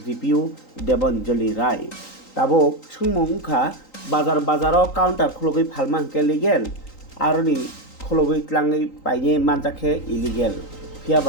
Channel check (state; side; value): late; right; 3.8 ms